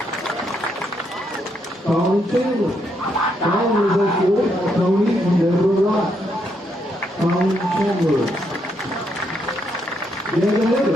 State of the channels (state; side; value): normal; both; correlation 0.77